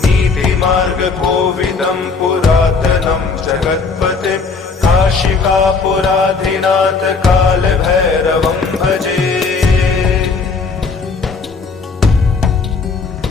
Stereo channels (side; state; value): right; quieter; 4.6 dB